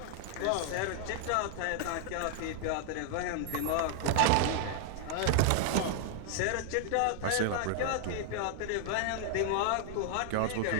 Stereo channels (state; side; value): different; both; correlation 0.00